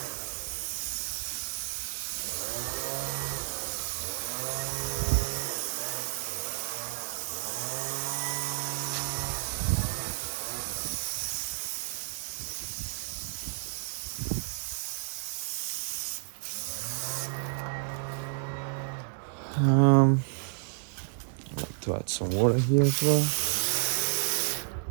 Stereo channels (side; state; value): left; silent; digital silence